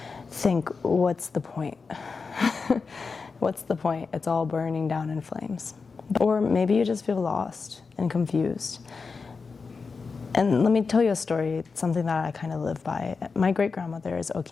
think, what's the point? What's the point? It's all burning down in flames. Or maybe you just feel lost and confused. And let me tell you a story, something that I kind of live by. My great-grandmother is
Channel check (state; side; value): quieter; right; 4.8 dB